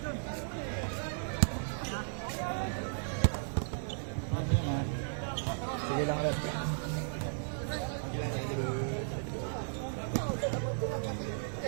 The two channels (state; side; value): silent; left; 54 dB below the other